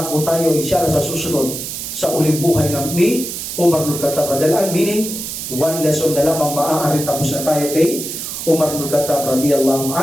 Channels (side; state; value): right; noise; hiss, 6 dB below the sound